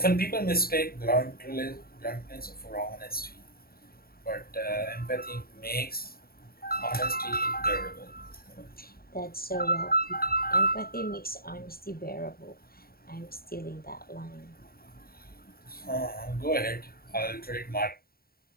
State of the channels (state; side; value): late; right; 0.44 ms